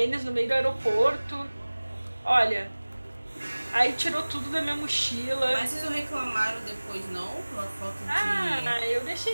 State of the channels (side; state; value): both; inverted; correlation -1.00